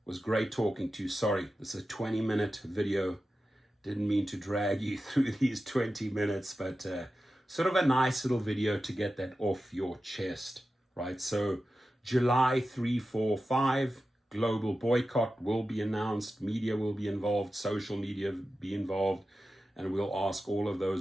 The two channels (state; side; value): normal; both; correlation 0.93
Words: was great talking to you. Sorry, this is a 20-minute video. Didn't mean to drag you through these 20 minutes, but sort of a nice little video to get that off your chest, right? So July 3, 4, 5, global boycott will be announced, media will be involved, social media be involved, and we'll ask all of